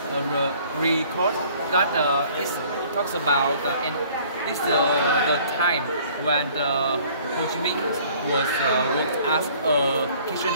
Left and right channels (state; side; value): inverted; both; correlation -0.55